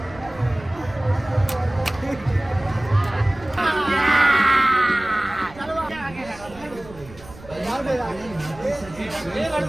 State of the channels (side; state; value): right; noise; rumble, 19 dB below the sound